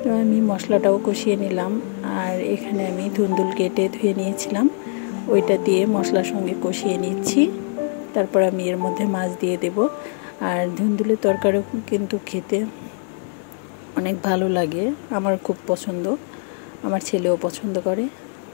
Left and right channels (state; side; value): silent; right; 56 dB below the other